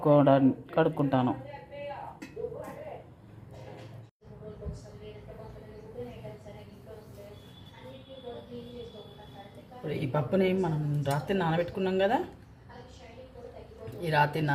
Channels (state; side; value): identical; both; correlation 1.00